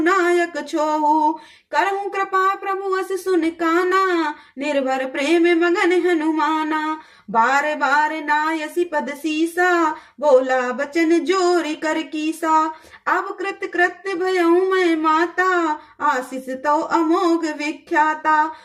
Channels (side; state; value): both; identical; correlation 1.00